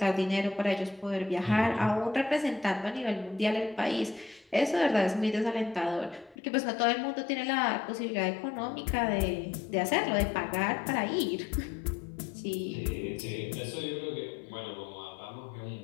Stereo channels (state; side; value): drops out; right; at 6.4 s